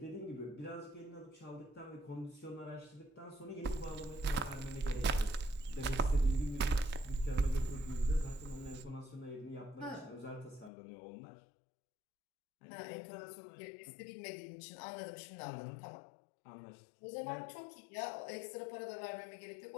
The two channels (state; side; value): drops out; right; at 10.7 s